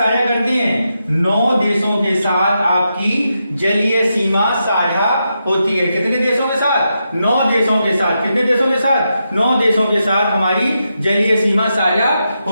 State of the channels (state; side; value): inverted; both; correlation -0.85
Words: करते हैं? 9 देशों के साथ आपकी जलीय सीमा साझा होती है। कितने देशों के साथ? 9 देशों के साथ। कितने देशों के साथ? 9 देशों के साथ हमारी जलीय सीमा साझा